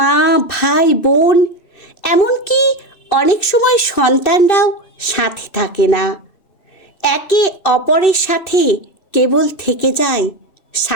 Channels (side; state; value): right; late; 2.6 ms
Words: ভাই বোন, এমনকি অনেক সময় সন্তানরাও সাথে থাকে না। একে অপরের সাথে কেবল থেকে যায়